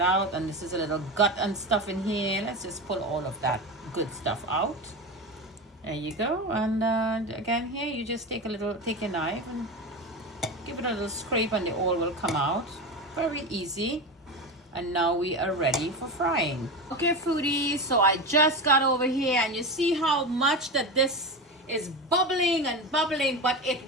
out. And this is a little gut and stuff in here. Let's just pull all of that good stuff out. There you go. And again here you just take your knife and give it a little scrape and the oil will come out. Very easy. And now we are ready for frying. Okay foodies, so I just got over here and you see how much that this is bubbling and bubbling, but it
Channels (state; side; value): normal; both; correlation 0.22